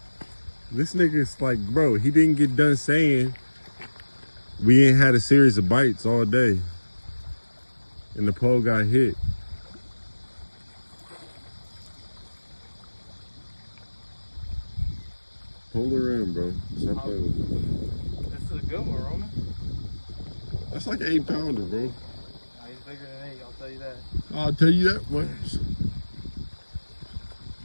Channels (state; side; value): inverted; both; correlation -1.00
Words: This nigga's like, bro, he didn't get done saying we ain't had a series of bites all day. And the pole got hit. Pull her in, bro. Stop playing with me. This is a good one, Roman. That's like an 8-pounder, bro. Nah, he's bigger than 8, I'll tell you that. I'll tell you that much.